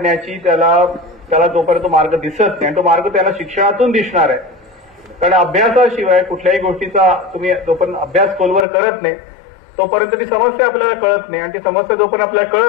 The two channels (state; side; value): drops out; right; at 8.7 s